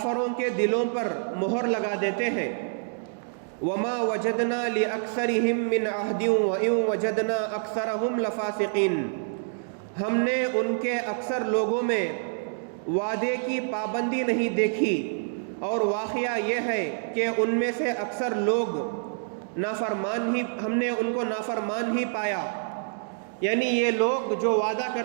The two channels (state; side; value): silent; left; digital silence